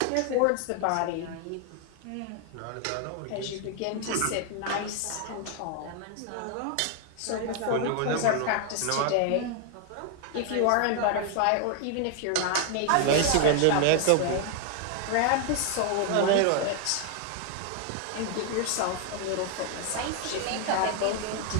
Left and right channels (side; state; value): both; different; correlation 0.00